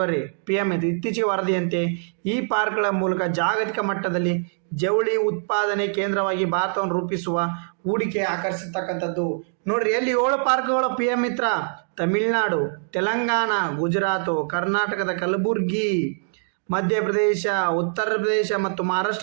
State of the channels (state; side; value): silent; left; digital silence